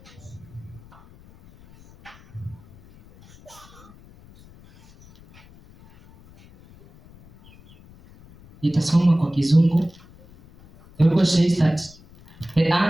Nitasoma kwa Kizungu. The Bible says that the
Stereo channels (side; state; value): left; noise; rumble, 24 dB below the sound